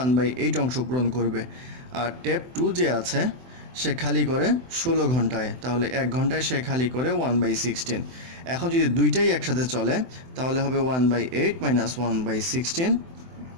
অংশ পূরণ করবে। আর ট্যাপ 2 যে আছে সে খালি করে 16 ঘন্টায়, তাহলে 1 ঘন্টায় সে খালি করে 1/16। এখন যদি দুইটাই একসাথে চলে তাহলে হবে 1/8 মাইনাস 1/16,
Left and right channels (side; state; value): left; late; 24 ms